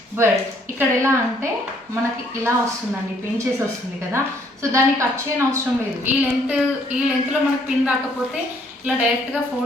బట్ ఇక్కడ ఎలా అంటే మనకి ఇలా వస్తుందండి, పిన్ చేసి వస్తుంది కదా. సో దాన్ని కట్ చేయని అవసరం లేదు. ఈ లెంత్లో మనకి పిన్ రాకపోతే ఇలా డైరెక్ట్గా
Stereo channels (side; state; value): both; normal; correlation 0.65